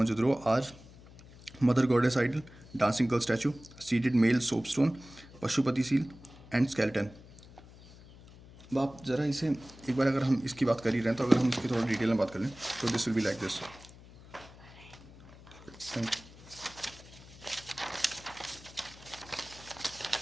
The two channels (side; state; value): left; noise; hum, 20 dB below the sound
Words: are mother goddess idol, dancing girl statue, seated male soapstone, Pashupati seal and skeleton. अब आप ज़रा इसे एक बार, अगर हम इसकी बात कर ही रहे हैं, तो अगर हम इसकी थोड़ा डिटेल में बात कर लें, तो this will be like this.